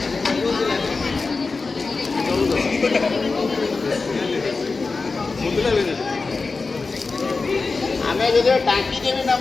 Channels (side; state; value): right; quieter; 4.1 dB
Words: ଆମେ ଯଦି ଟାଙ୍କି କେବେ